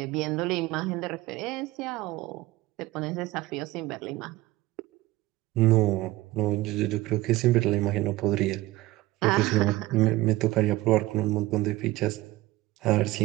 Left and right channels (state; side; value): quieter; left; 18.5 dB